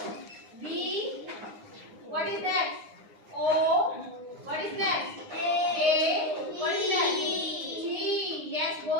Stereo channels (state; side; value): late; left; 9.7 ms